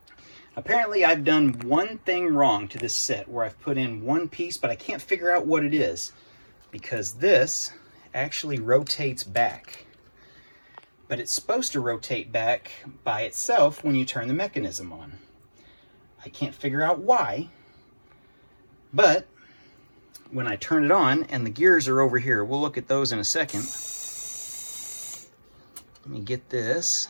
Apparently I've done one thing wrong to this set where I've put in one piece, but I can't figure out what it is, because this actually rotates back. But it's supposed to rotate back by itself when you turn the mechanism on. I can't figure out why, but when I turn it on, and the gears are over here, we'll look at those in a second. Let me get this.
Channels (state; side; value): inverted; both; correlation -1.00